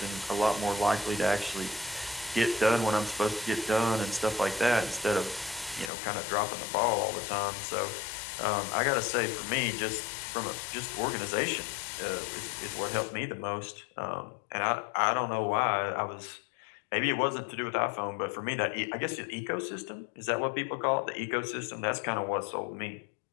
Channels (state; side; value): drops out; right; at 5.9 s